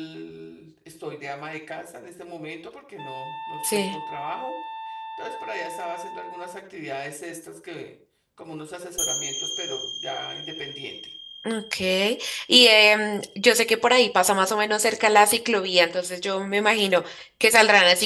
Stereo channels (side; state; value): both; identical; correlation 1.00